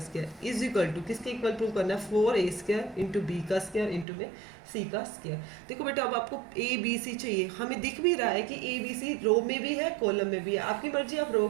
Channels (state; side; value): drops out; left; at 4.0 s